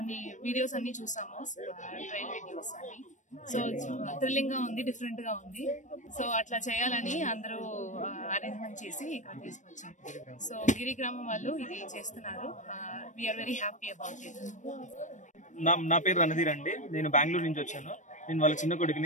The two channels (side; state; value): right; late; 0.36 ms